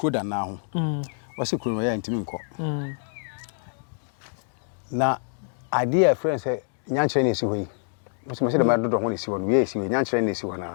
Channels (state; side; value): silent; right; digital silence